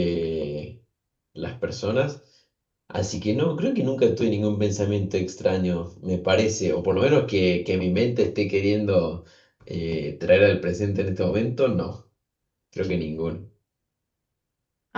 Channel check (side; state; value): both; identical; correlation 1.00